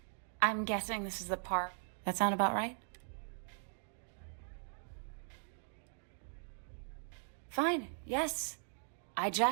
I'm guessing this is the part. That sound about right? Fine, yes. I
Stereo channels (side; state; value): left; silent; 51 dB below the other